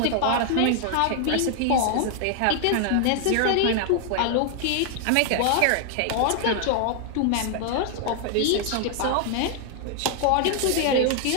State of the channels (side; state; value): both; different; correlation 0.00